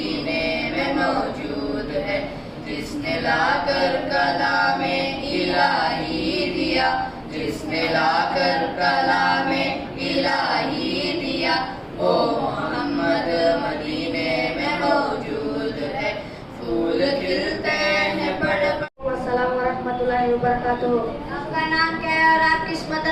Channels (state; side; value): identical; both; correlation 1.00